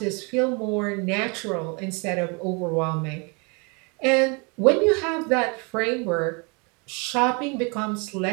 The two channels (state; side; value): quieter; left; 31.8 dB